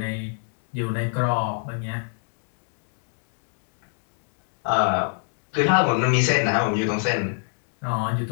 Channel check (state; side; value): silent; right; digital silence